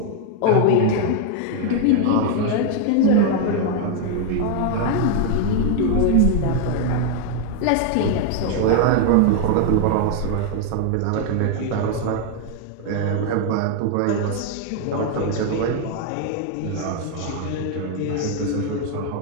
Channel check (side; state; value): both; different; correlation 0.00